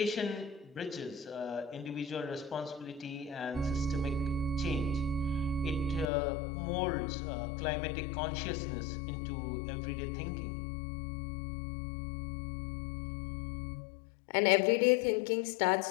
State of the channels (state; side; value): drops out; right; at 6.1 s